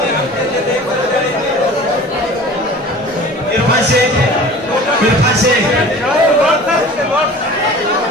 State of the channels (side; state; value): both; normal; correlation 0.42